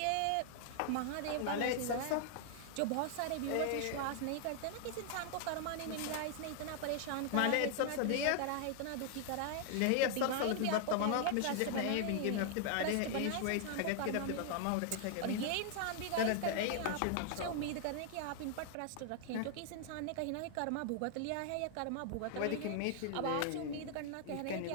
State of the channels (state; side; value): different; both; correlation 0.00